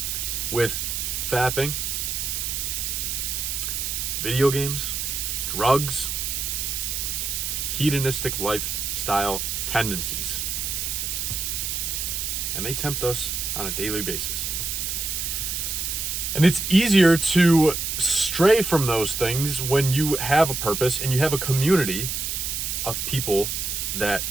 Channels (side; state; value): right; noise; hiss, 2 dB below the sound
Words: with fapping, video games, drugs, hedonistic lifestyle tendencies. And they tempt us on a daily basis. And it's easier to stray from those things when you have a purpose and you have a community of people that